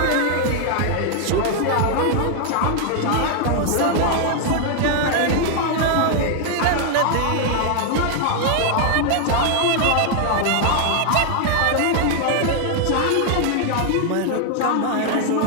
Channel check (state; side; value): different; both; correlation 0.00